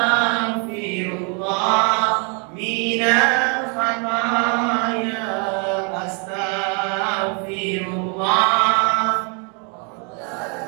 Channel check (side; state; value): left; quieter; 36.9 dB